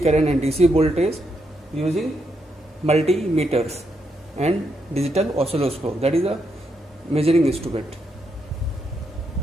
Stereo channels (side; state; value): both; normal; correlation 0.80